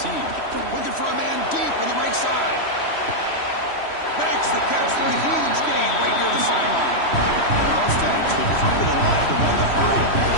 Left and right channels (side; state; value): right; late; 3.1 ms